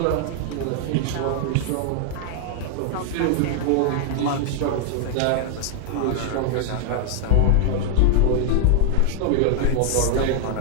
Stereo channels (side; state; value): both; different; correlation 0.00